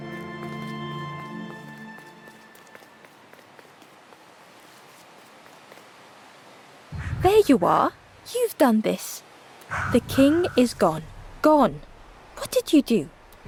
There you are. You've done this. The king is gone. Gone. What did you do?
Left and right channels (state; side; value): identical; both; correlation 1.00